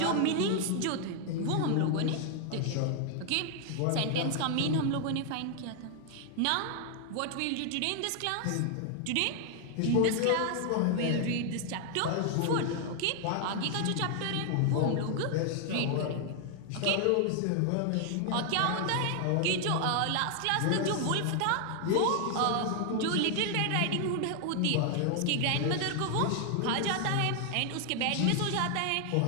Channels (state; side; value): different; both; correlation 0.00